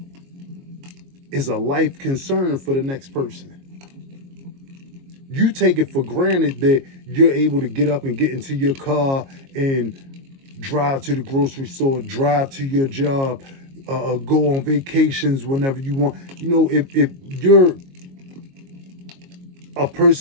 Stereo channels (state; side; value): late; left; 22 ms